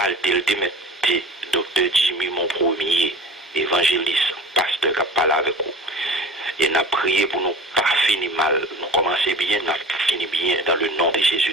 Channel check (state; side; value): normal; both; correlation 0.40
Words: le démetté, docteur Jimmy, mon premier évangéliste, pasteur qui a parlé avec vous. Et nous avons prié pour nous pas finir mal, nous commencer bien, nous finir bien dans le nom de Jésus